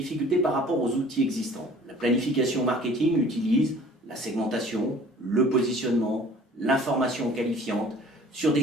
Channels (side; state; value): both; normal; correlation 0.50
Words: par rapport aux outils existants. La planification marketing utilise la segmentation, le positionnement, l'information qualifiante, sur des